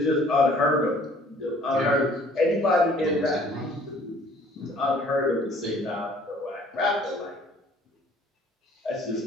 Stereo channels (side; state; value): both; normal; correlation 0.56